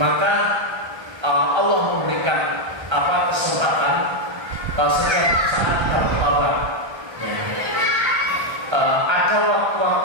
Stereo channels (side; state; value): left; late; 1.3 ms